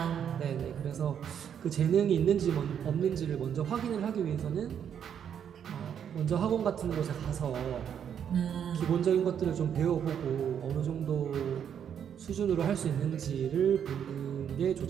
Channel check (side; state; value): left; quieter; 8.5 dB